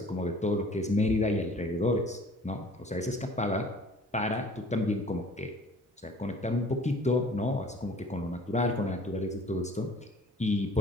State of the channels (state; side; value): normal; both; correlation 0.50